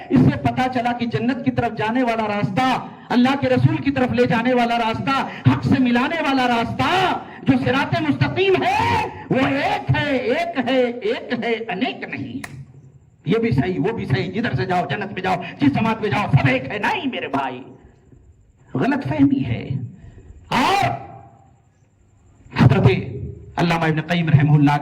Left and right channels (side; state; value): both; identical; correlation 1.00